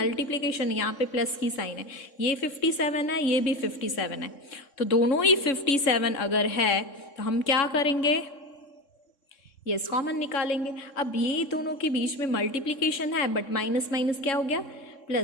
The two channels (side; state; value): right; late; 3.6 ms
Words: यहाँ पे प्लस की साइन है, ये 57 है, ये भी 57 है, तो दोनों ही 57 अगर है तो हम क्या करेंगे, ये कॉमन निकालेंगे। अब ये दोनों के बीच में मल्टीप्लिकेशन है बट माइनस माइनस क्या हो गया